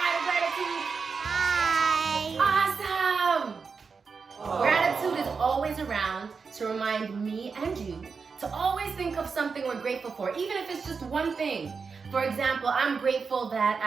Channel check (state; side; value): quieter; left; 5.2 dB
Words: to Gratitude? Hi. Awesome! Gratitude is always around to remind me and you to always think of something we're grateful for, even if it's just one thing. For example, I'm grateful that